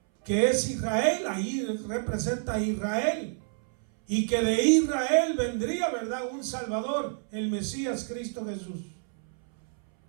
que es Israel. Ahí representa a Israel, y que de Israel vendría, ¿verdad?, un Salvador, el Mesías, Cristo Jesús.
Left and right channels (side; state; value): left; silent; 59 dB below the other